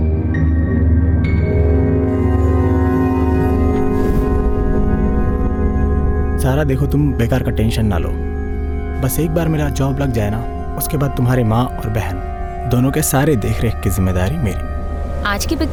सारा देखो, तुम बेकार का टेंशन ना लो। बस एक बार मेरा जॉब लग जाए ना, उसके बाद तुम्हारी माँ और बहन दोनों के सारे देख रेख की जिम्मेदारी मेरी। आज की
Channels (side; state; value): both; identical; correlation 1.00